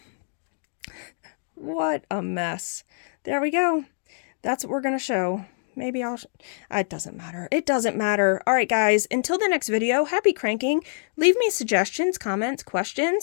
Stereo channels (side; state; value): right; silent; digital silence